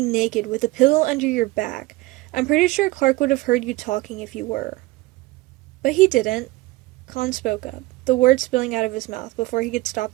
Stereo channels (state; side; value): quieter; left; 20.2 dB